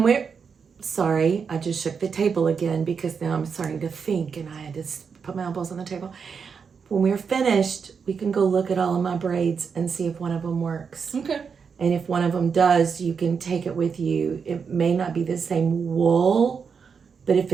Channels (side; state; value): left; quieter; 6.1 dB